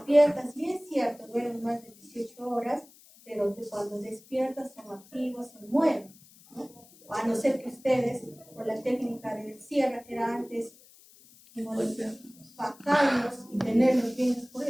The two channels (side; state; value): left; noise; hiss, 25 dB below the sound